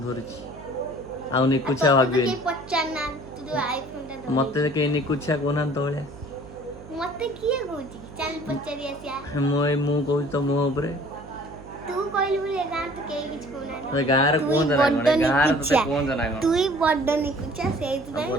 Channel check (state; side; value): noise; right; hum, 16 dB below the sound